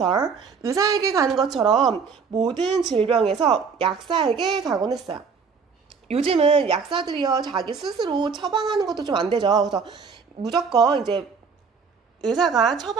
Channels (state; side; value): quieter; left; 5.6 dB